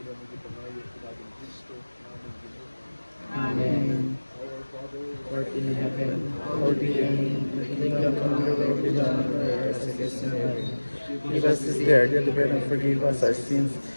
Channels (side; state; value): both; inverted; correlation -1.00